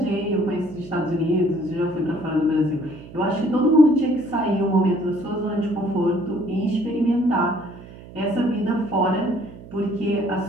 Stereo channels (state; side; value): noise; right; hum, 17 dB below the sound